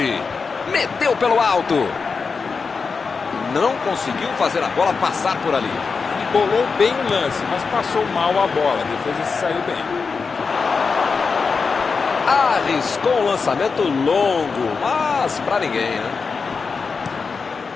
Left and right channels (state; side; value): quieter; right; 4.9 dB